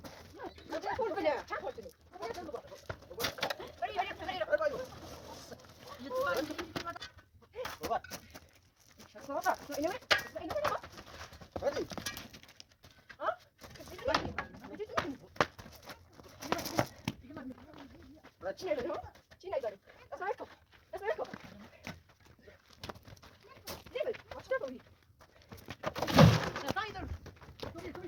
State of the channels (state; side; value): identical; both; correlation 1.00